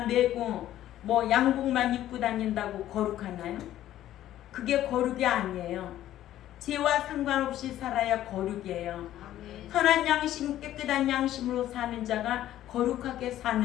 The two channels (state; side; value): quieter; right; 12.9 dB